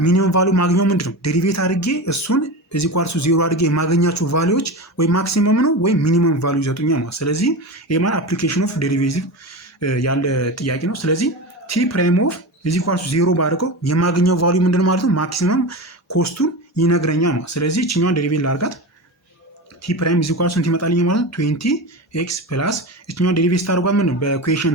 ሚኒመም ቫልዩ ማግኘው ምንድን ነው? ዴሪቬት አድርጌ እሱን እዚህ ኳርሱ 0 አድርጌ የማገኛቸው ቫልዩዎች ወይ ማክሲመም ነው ወይ ሚኒመም ቫልዩ ይሰጡኛል ማለት። ስለዚህ ይሄ ማለት አፕሊኬሽን ኦፍ ዴሪቬቲቭ ያለ ጥያቄ ነው። ስለዚህ ቲ ፕራይም ኦፍ እዚህ ኳርሱ 0 ባድርገው የማገኘው ቫልዩ ምንድን ማለት ነው? ማክሲመም ኮስቱን ይነግረኛል ማለት። ስለዚህ እችኛዋን ዴሪቬት ላድርጋት። ቲ ፕራይም እዚህ ኳርሱ ስንት ይመጣልኝ ማለት ነው? 20 ኤክስ ፕላስ እችኛዋን ዴሪቬት ስታደርጓት ምን ነው? በኢኩዌሽን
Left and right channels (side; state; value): both; normal; correlation 0.25